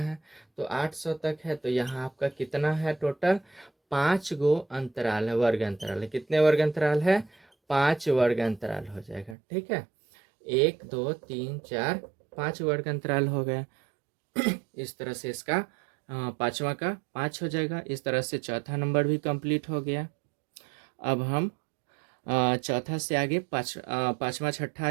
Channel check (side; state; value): left; drops out; at 9.3 s